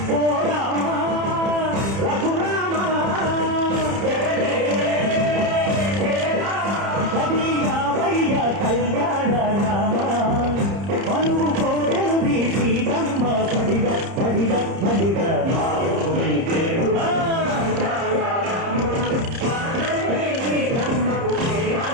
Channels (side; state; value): left; late; 30 ms